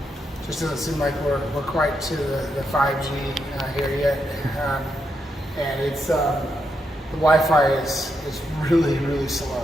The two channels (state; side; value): normal; both; correlation 0.82